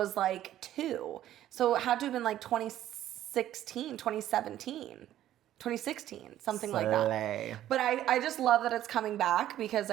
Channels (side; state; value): left; quieter; 12.5 dB